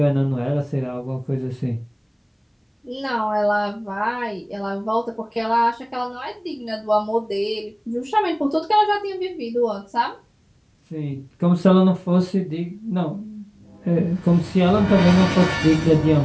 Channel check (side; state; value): both; identical; correlation 1.00